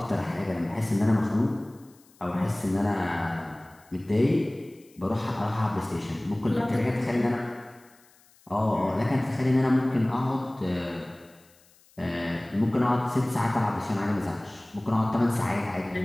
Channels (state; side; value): noise; left; hiss, 30 dB below the sound